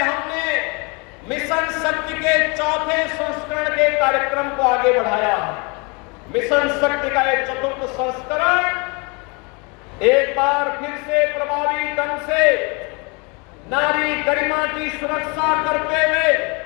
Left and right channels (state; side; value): quieter; right; 30.9 dB